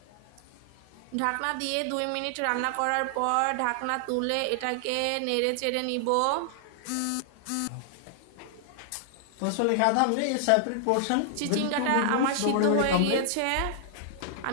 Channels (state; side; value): different; both; correlation -0.01